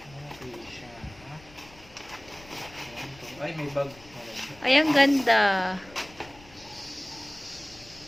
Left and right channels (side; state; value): left; noise; rumble, 22 dB below the sound